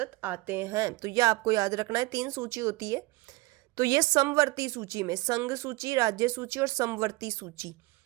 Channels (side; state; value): left; quieter; 23.0 dB